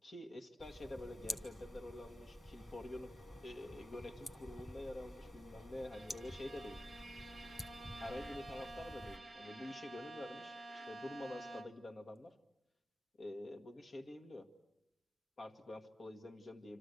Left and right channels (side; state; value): both; normal; correlation 0.93